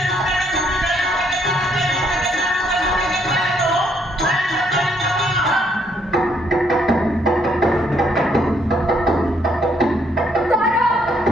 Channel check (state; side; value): normal; both; correlation 0.70